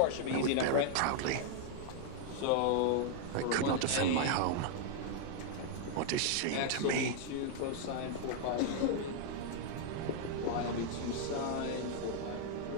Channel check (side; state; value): both; different; correlation 0.00